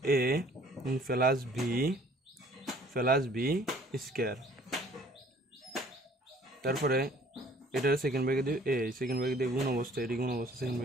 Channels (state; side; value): normal; both; correlation 0.56